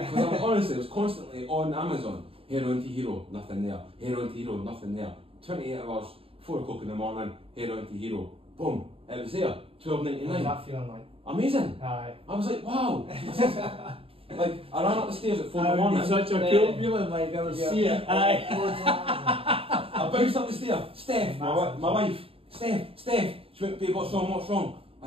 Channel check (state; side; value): late; left; 0.27 ms